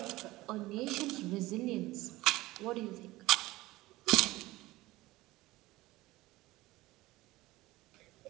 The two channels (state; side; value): quieter; left; 18.8 dB